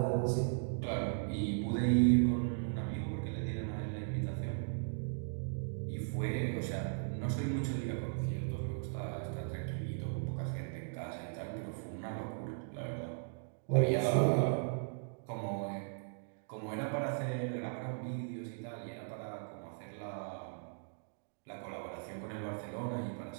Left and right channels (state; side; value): silent; left; digital silence